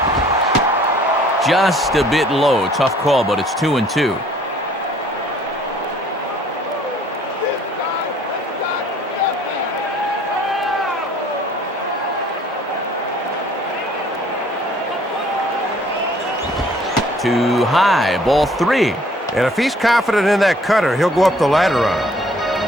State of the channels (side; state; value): both; normal; correlation 0.57